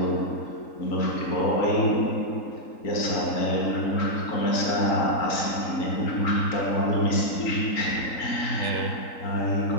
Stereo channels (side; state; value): right; late; 3.9 ms